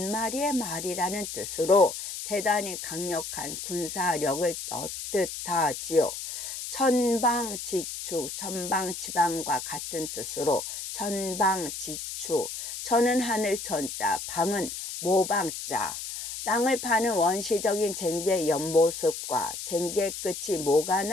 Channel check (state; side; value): noise; left; hiss, 7 dB below the sound